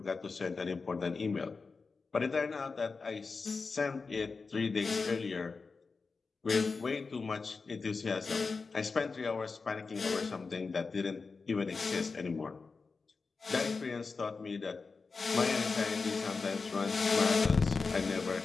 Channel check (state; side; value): quieter; right; 4.5 dB